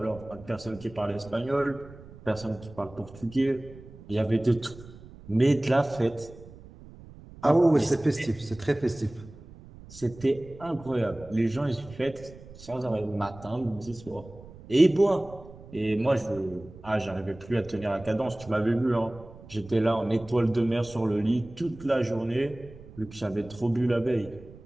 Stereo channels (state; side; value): noise; right; rumble, 19 dB below the sound